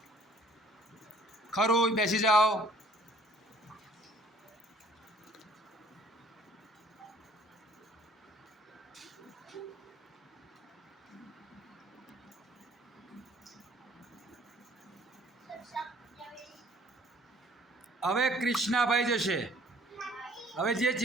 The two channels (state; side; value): normal; both; correlation 0.56